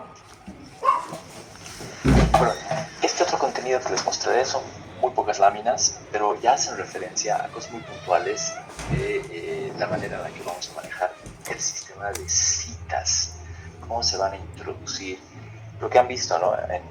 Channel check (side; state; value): both; identical; correlation 1.00